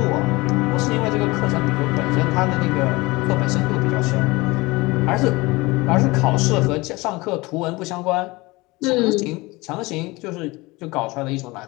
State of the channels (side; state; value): right; quieter; 22.6 dB